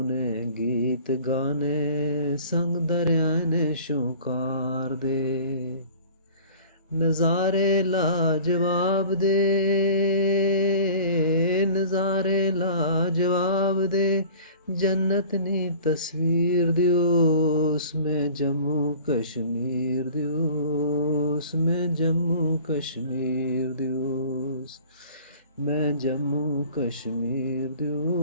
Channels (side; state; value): both; inverted; correlation -0.45